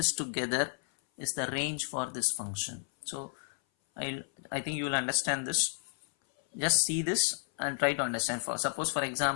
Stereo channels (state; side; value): silent; right; 56 dB below the other